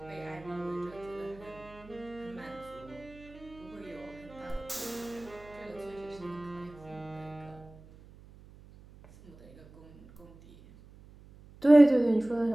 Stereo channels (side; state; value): right; noise; hum, 22 dB below the sound